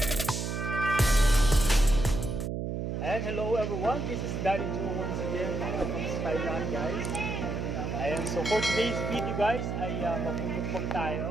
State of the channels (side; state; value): right; noise; hum, 3 dB below the sound